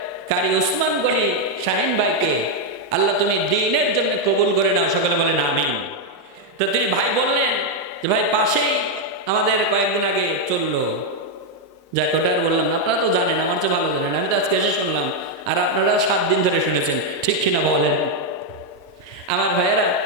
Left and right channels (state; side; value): normal; both; correlation 0.01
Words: কারি উসমান গনি শাহিন ভাইকে আল্লাহ তুমি দ্বীনের জন্য কবুল করে নাও, সকলে বলেন আমিন। তো তিনি ভাই বললেন যে ভাই পাশেই আমাদের কয়েকদিন আগে চললো, যাক ওটা আর বললাম না, আপনারা তো জানেন, আমার চেয়ে ভালো জানেন, আমি তো আজকে এসে শুনলাম, আর আপনারা 7 দিন ধরে শুনেছেন, ঠিক কিনা বলেন? আমার ভাইয়েরা,